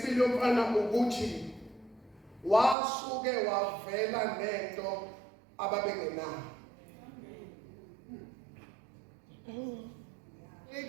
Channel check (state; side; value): drops out; left; at 2.8 s